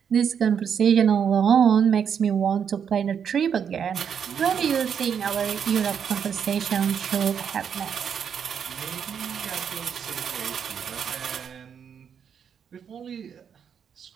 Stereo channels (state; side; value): quieter; left; 7.6 dB